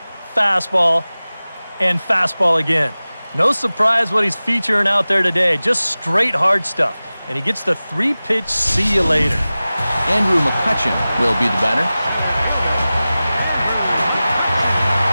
fastball, and fastball again. No surprise what he's featuring out there today. Just straight hard stuff. And he gets the 3-pitch see you later. Andrew McCutchen will be the batter.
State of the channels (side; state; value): both; inverted; correlation -0.97